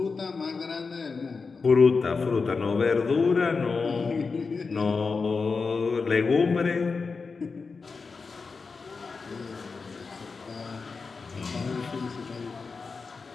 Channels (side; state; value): right; quieter; 4.6 dB